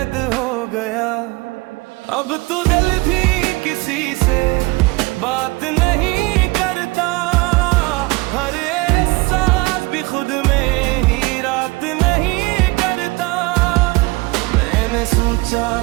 हो गया। अब तू दिल भी किसी से बात नहीं करता, हर एहसास भी खुद में ही रात नहीं करता। मैंने सोचा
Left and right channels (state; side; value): quieter; left; 23.7 dB